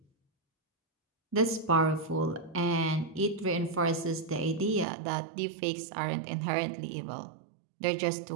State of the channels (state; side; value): drops out; left; at 4.9 s